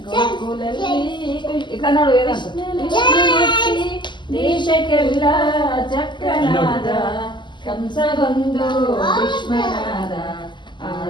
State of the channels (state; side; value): late; right; 0.22 ms